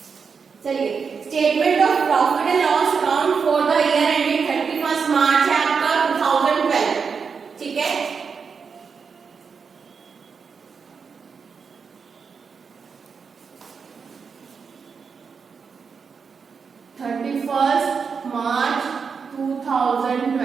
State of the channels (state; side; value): quieter; left; 5.7 dB